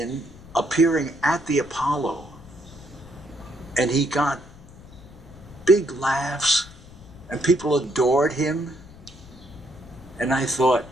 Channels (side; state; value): left; noise; rumble, 20 dB below the sound